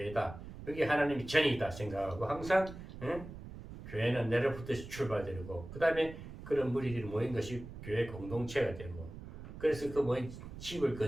여기 하나님이 전이다 생각하고 항상 교회는 내로부터 출발되고 그 다음에 그런 무리들이 모인 것이 교회 공동체가 되고 그래서 그 뭐 집을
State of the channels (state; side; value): noise; right; rumble, 13 dB below the sound